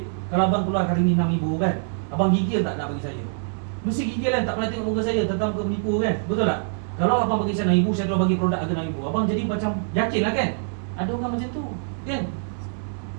kalau abang keluar hari ni RM6,000 kan, abang gigil tak nak bagi saya? Mesti gigil kan, tak pernah tengok muka saya, tentang muka menipu kan, betul tak? Kalau abang bagi saya RM6,000, saya terus bagi produk harga RM6,000, abang jadi macam yakin lah kan? Ada orang macam tu, kan?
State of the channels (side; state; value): left; silent; digital silence